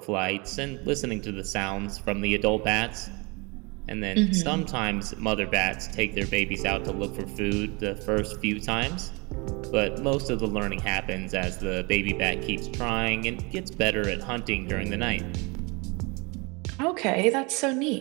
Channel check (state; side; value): quieter; left; 28.5 dB